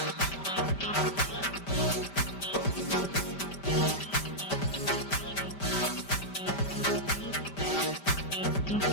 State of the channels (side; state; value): right; late; 5.1 ms